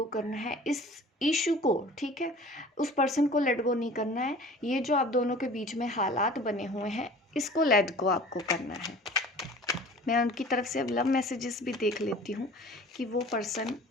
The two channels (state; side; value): normal; both; correlation 0.44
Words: करना है इस इशू को, ठीक है। उस पर्सन को लेट गो नहीं करना है। ये जो आप दोनों के बीच में हालात बने हुए हैं इसको लेट गो आपको करना है। मैं उनकी तरफ से अब लव मैसेजेस भी देख लेती हूँ कि वो पर्सन